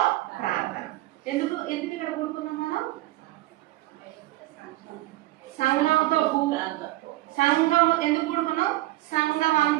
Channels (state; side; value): quieter; left; 17.2 dB